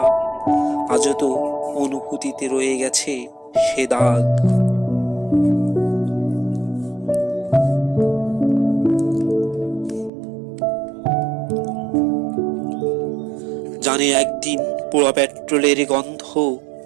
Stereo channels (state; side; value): drops out; left; at 10.1 s